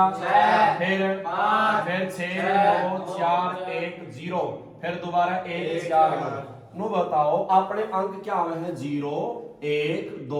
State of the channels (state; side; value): identical; both; correlation 1.00